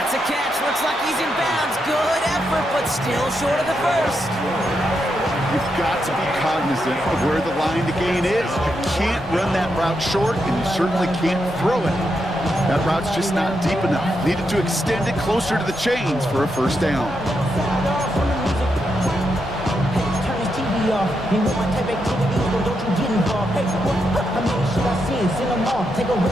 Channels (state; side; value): normal; both; correlation 0.83